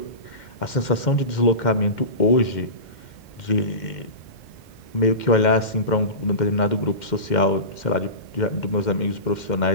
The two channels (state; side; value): late; right; 2.1 ms